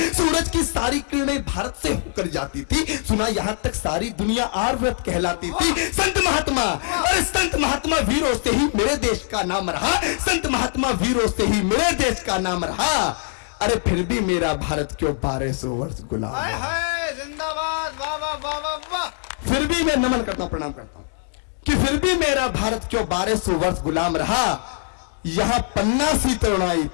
सूरज की सारी किरणें भारत से होकर जाती थी, सुना यहां तक सारी दुनिया आर्यव्रत कहलाती थी। संत महात्मा, और संत महात्मा वीरों से ही मेरे देश का नाम रहा, संत महात्मा वीरों से ही मेरे देश का नाम रहा। अरे फिर भी मेरा भारत क्यों 1200 वर्ष गुलाम है? जिंदाबाद, वाह वाह वाह वाह वाह। फिर भी मैं नमन करता हूं, प्रणाम करता हूं कि फिर भी मेरा भारत क्यों 1200 वर्ष गुलाम रहा। यहां पन्ना सी तरुणाई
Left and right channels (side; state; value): right; silent; 64 dB below the other